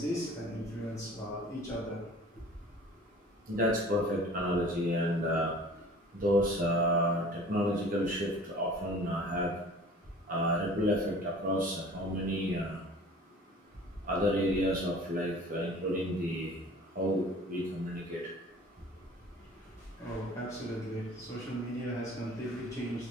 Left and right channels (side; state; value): both; normal; correlation 0.46